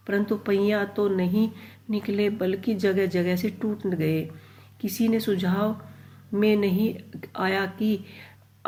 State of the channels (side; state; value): both; identical; correlation 1.00